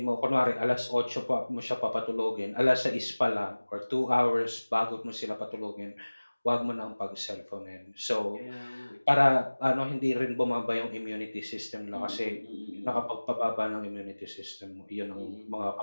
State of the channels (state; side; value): inverted; both; correlation -1.00